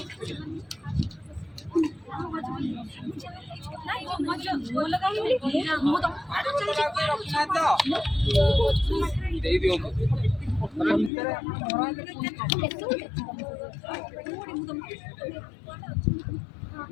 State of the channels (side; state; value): right; drops out; at 11.1 s